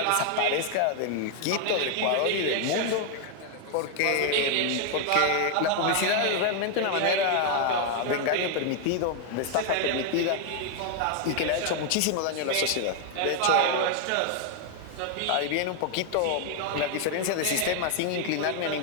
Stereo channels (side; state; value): both; different; correlation 0.00